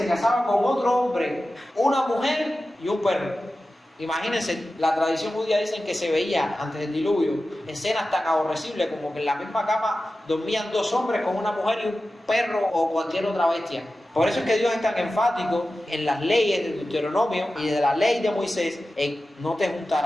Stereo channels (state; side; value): normal; both; correlation 0.94